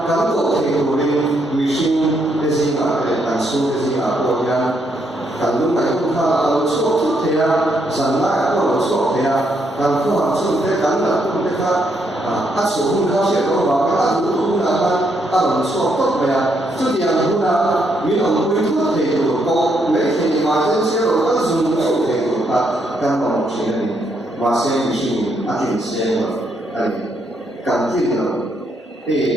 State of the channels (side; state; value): both; normal; correlation 0.76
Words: căn có thể của mình xin cái gì mà để căn số cái gì mà của nhà căn lúc này cũng là số chút thế à sản lại có số thế à căn có hàng số thế căn là cũng thế khác áp số cũng khác sẽ có vào cái áp cũng là ăn số tốt vậy à chút tiền cũng là mình không biết thuốc thì của cô mấy thì mà trên xe rồi có dùng số thì của căn còn một chuyện này mà xe mình xin áp tiền xe rồi đây căn tin rồi